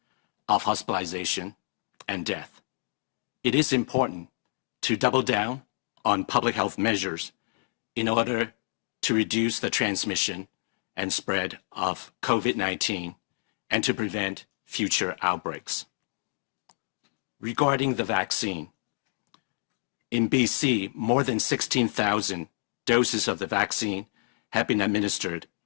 of hospitalization and death. It is important to double down on public health measures in order to reduce the transmission and spread of COVID-19 and to prevent future outbreaks. Regarding the vaccine, in BC, more than 16,000 doses of the vaccine have been administered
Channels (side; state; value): right; silent; digital silence